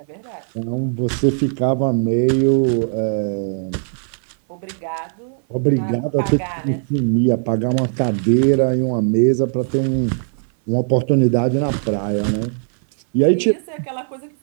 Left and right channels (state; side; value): silent; left; 59 dB below the other